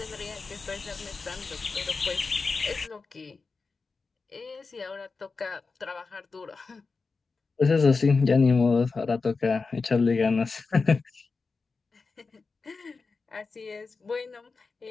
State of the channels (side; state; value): right; quieter; 4.4 dB